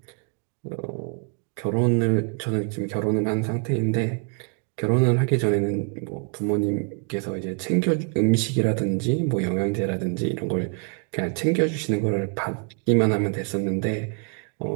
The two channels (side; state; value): left; quieter; 36.1 dB